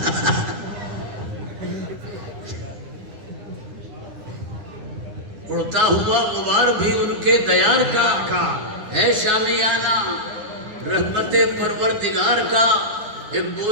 اڑتا ہوا غبار بھی ان کے دیار کا ہے شامیانہ, رحمت پروردگار کا ایک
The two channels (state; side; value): late; left; 9.9 ms